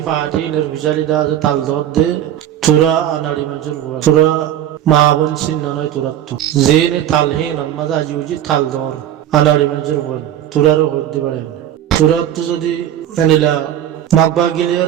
ফাটি নির্বিচারি দা আছে তাল দর দে তোরা আনাড়ি মানুষের হয় তোরা মা বোন চিন্না নয় তোরা তো যে নে তালহীন মাঝে আজি উজি তাল দর আনাড়ি মানুষের হয় তোরারও হতে পারে তোরা তো যদি এনিলা মগবা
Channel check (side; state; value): left; quieter; 11.3 dB